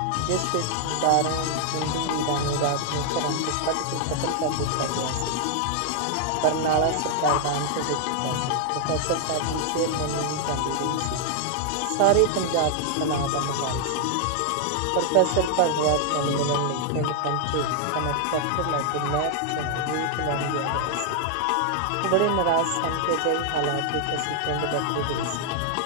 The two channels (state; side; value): different; both; correlation 0.00